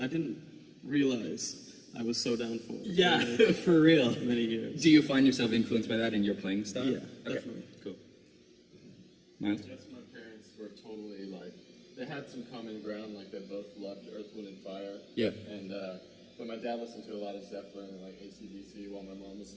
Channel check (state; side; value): identical; both; correlation 1.00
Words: I didn't realize I was so down for. Yeah, For, like, for real. many years. Do you find yourself influenced by that in your playing style? Yeah, Okay, definitely. Cool. Miles? Yes, my parents were totally like, they had some common ground, like they both loved Earth, Wind, and Fire. Yeah. And, but my dad listened to a lot of Zeppelin and like AC/DC, while my mom was